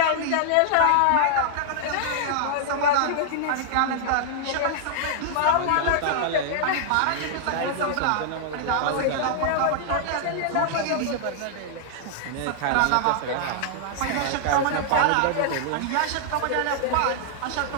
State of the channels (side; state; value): both; different; correlation -0.01